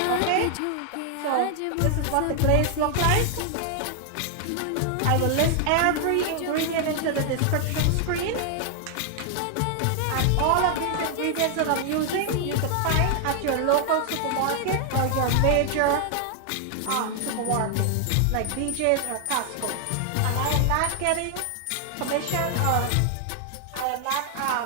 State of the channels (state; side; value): different; both; correlation 0.00